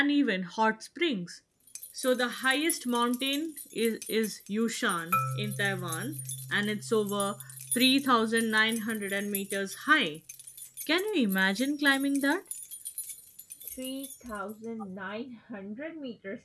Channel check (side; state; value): both; identical; correlation 1.00